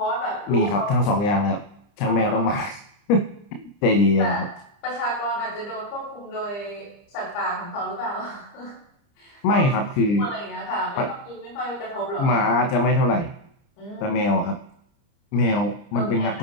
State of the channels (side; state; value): right; late; 30 ms